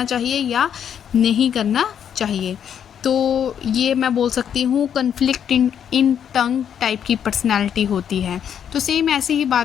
चाहिए या नहीं करना चाहिए। तो ये मैं बोल सकती हूँ कन्फ्लिक्ट इन टंग टाइप की पर्सनैलिटी होती है। तो सेम ऐसी ही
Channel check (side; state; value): right; quieter; 8.7 dB